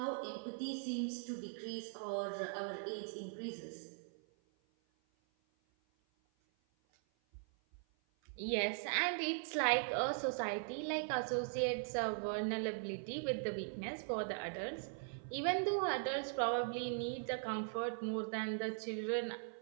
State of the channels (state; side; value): silent; left; 51 dB below the other